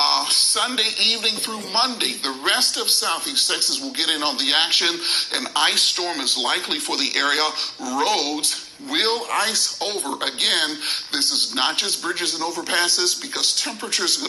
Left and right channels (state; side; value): identical; both; correlation 1.00